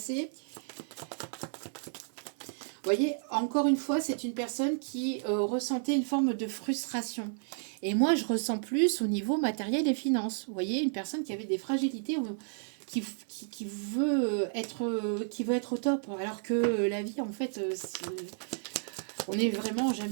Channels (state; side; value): silent; left; 56 dB below the other